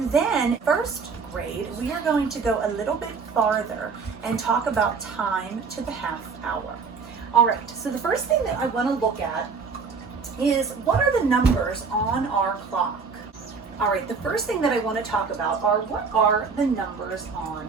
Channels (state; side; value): quieter; left; 5.2 dB